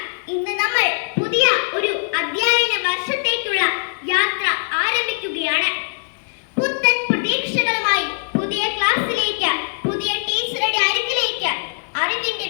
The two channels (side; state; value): right; silent; digital silence